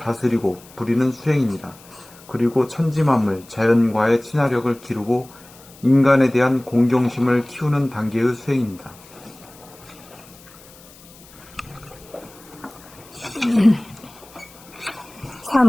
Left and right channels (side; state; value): left; noise; hiss, 23 dB below the sound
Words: 부리는 수행입니다. 그리고 천지만물, 자연과의 친화력을 기르고 인간에 대한 공경심을 키우는 단계의 수행입니다.